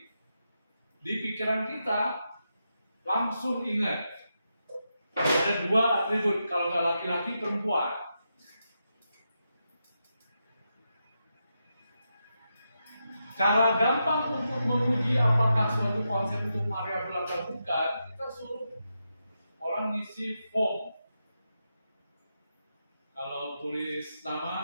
di pikiran kita langsung ingat ada 2 atribut kalau nggak laki-laki perempuan. Cara gampang untuk menguji apakah suatu konsep itu variabel atau bukan, kita suruh orang ngisi form. Kalau tulis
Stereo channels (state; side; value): inverted; both; correlation -0.86